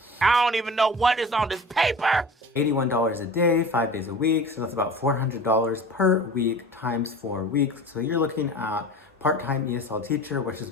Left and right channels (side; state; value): both; normal; correlation 0.37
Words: I don't even know what is on this paper. $81 a day, 5 days a week, so that's about $400 per week times 4 weeks. So you're looking at part-time ESL teacher, which is